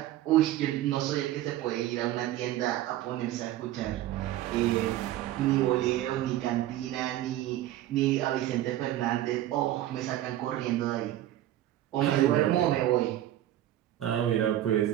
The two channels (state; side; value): quieter; left; 13.7 dB